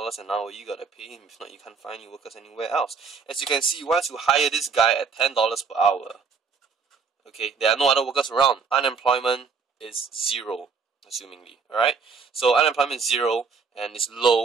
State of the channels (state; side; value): quieter; left; 5.3 dB